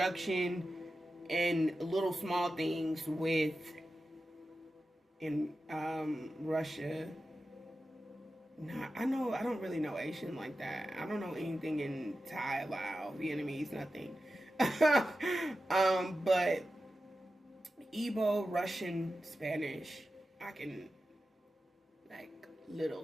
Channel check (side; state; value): both; normal; correlation 0.92